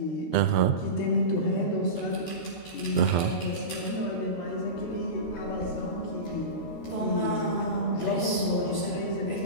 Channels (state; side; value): late; right; 12 ms